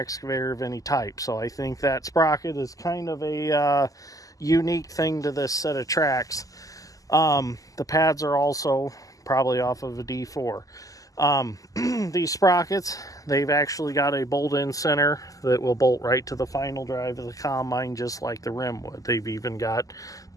of any type. So I think that sprocket is kind of a unique thing to this set of tracks. The pads are also probably off of a D4. These sprockets, they've actually got a bolt-in center that will bolt right to the final drive of the combine, just like the rim would. They've even got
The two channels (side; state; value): right; late; 0.17 ms